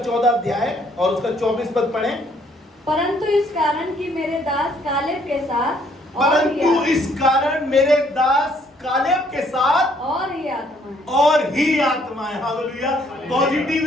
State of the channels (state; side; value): normal; both; correlation 0.65